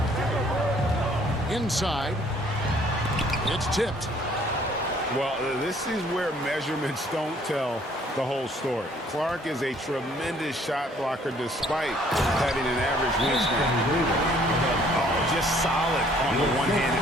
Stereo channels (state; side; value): normal; both; correlation 0.60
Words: Inside. It's tipped. Well, this is where measurements don't tell the whole story. Clark is a tremendous shot blocker despite having an average wingspan. Oh, just solid on the